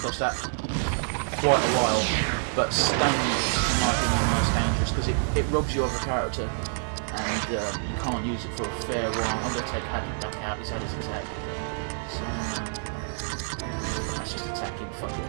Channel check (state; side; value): silent; left; 60 dB below the other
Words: that quite a while, but stun, in my opinion, is the most dangerous because it robs you of a character, and you can't use it for a fair while. I'm going to take Hadwood back out. He's had his attack, so let's just attack him. Fuck it.